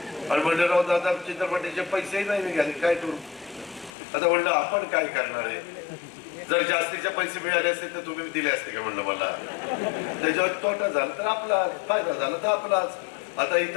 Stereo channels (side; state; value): right; drops out; at 3.9 s